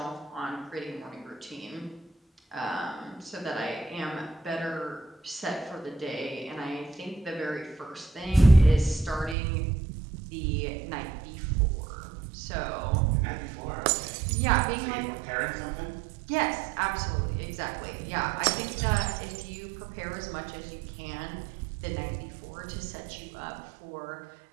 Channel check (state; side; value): drops out; left; at 9.3 s